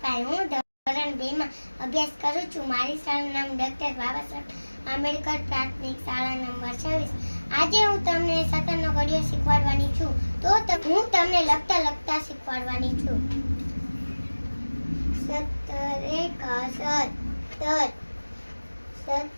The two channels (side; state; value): both; inverted; correlation -1.00